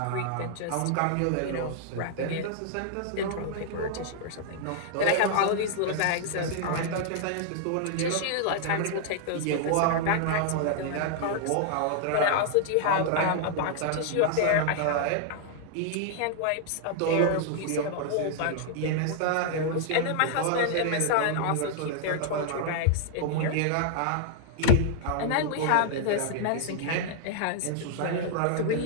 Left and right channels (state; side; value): different; both; correlation -0.01